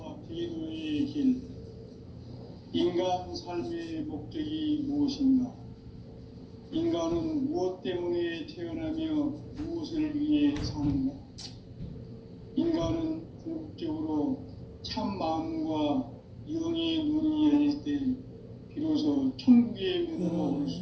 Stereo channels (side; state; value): both; identical; correlation 1.00